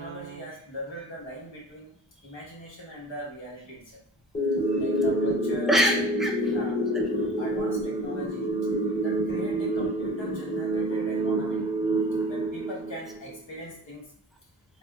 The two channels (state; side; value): normal; both; correlation 0.42